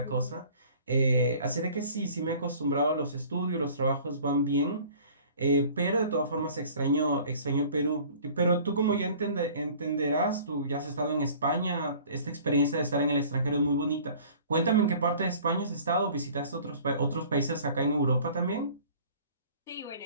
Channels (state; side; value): inverted; both; correlation -0.49